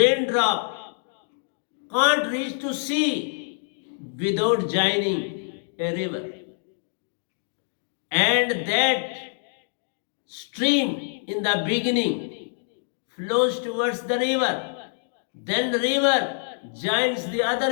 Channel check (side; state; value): right; silent; digital silence